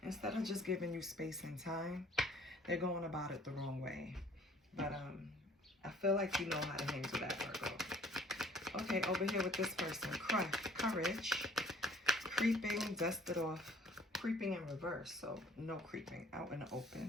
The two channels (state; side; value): normal; both; correlation 0.56